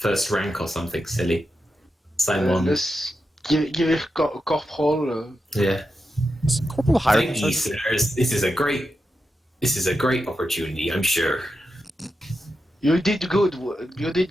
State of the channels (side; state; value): both; normal; correlation 0.89